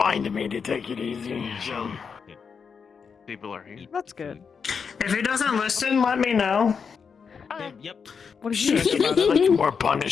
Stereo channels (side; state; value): right; quieter; 6.1 dB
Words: me to take it easy. So People are here. That's good. If he doesn't listen, let me know. Yep. What did you it's like more